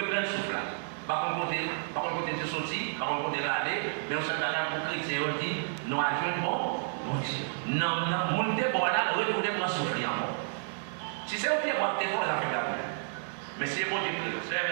souffle là. Par contre, de sortir, par contre, de aller, mais on s'est allé pour chrétien, on dit, nous avons bon, mon Dieu. Non, mon Dieu, bon là, retourner pour souffler encore. Si c'est au pied, moi, t'es pour les affaires d'ailleurs. Mais c'est bon Dieu, c'est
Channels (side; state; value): left; silent; digital silence